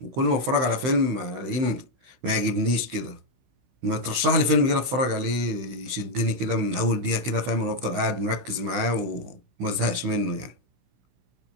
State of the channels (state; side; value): late; left; 16 ms